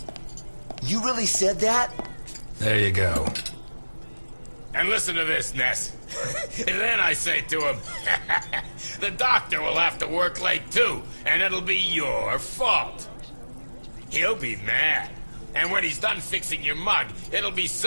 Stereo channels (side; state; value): both; inverted; correlation -1.00